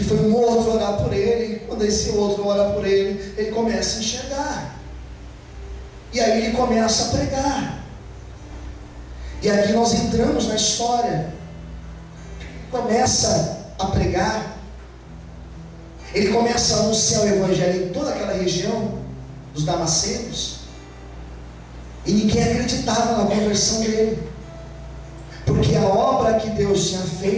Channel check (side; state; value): both; identical; correlation 1.00